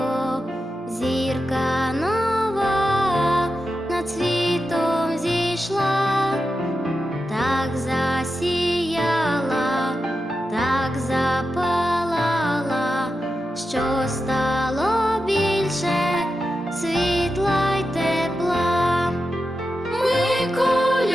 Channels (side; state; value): both; normal; correlation 0.90